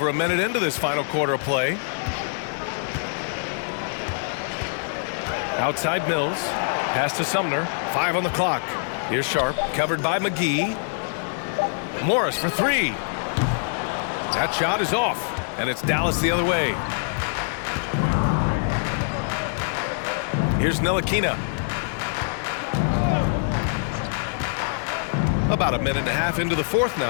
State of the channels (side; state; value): right; silent; digital silence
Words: a minute into this final quarter of play. Outside Mills. Pass to Sumner. 5 on the clock. Here's Sharp. Covered by McGee. Morris for 3. That shot is off. And it's Dallas the other way. Here's Ntilikina. About a minute and a half into the fourth